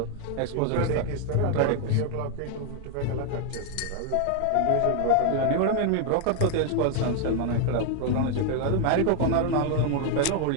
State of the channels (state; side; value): different; both; correlation 0.00